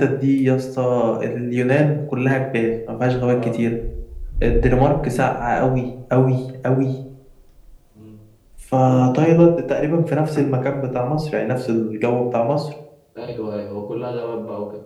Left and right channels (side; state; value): both; identical; correlation 1.00